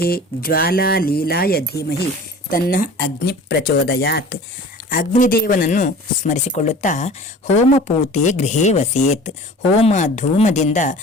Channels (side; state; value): both; normal; correlation 0.42